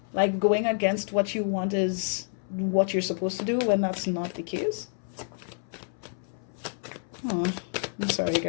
Like going against what you want is what you're supposed to do when that's not the case. Oh, I'm sorry,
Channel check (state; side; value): silent; right; 59 dB below the other